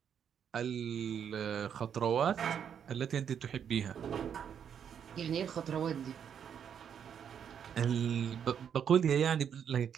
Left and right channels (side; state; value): left; quieter; 8.2 dB